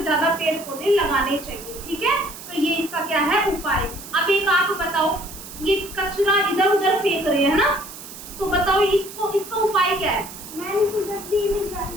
पेड़ पौधे लगाने चाहिए। ठीक है, तो ये इसका क्या है उपाय। अब एक आप बताओ, ये कचरा इधर उधर फेंक रहे हैं ना, तो बताओ इसका उपाय क्या है?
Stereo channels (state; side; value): noise; right; hiss, 14 dB below the sound